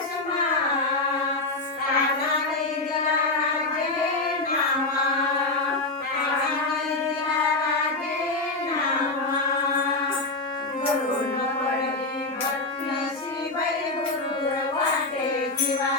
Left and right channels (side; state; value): right; quieter; 3.1 dB